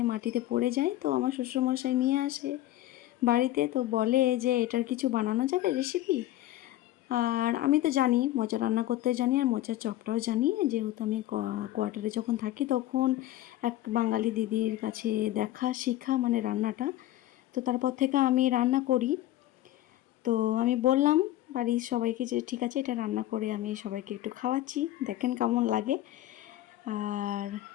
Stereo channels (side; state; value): right; quieter; 14.6 dB